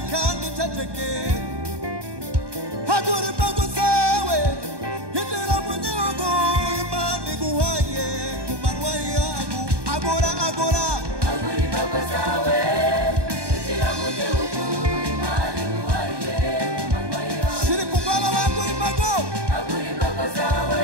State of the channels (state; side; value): late; left; 1.2 ms